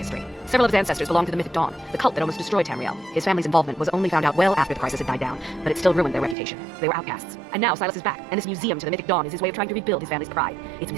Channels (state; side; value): drops out; left; at 6.4 s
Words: Several of his ancestors belong to the Mythic Dawn, the cult that almost destroyed Tamriel. His family's involvement was only found out well after the crisis had died down, but it still ruined their reputation. They were outcasts. And now Silas is back, and this museum to the Mythic Dawn is his way of trying to rebuild his family's pride. It's